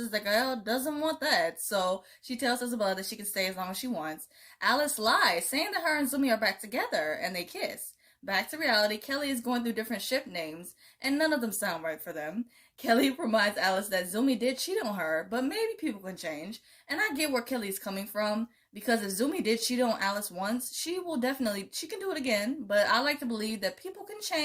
that Gael doesn't want that, so she tells Isabella that she can stay as long as she wants. Alice lies, saying that her and Zumi are back together, and they kiss. Back to reality, Kelly is going through different ship names, and none of them sound right for them. Kelly reminds Alice that Zumi did cheat on her, but maybe people can change. And I get where Kelly's coming from, because if Zumi did cheat on Alice once, she can do it again. But I like to believe that people can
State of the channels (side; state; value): both; identical; correlation 1.00